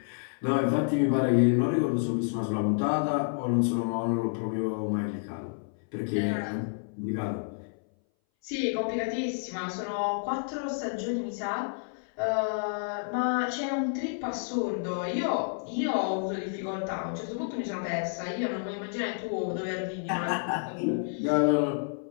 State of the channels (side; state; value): right; silent; 58 dB below the other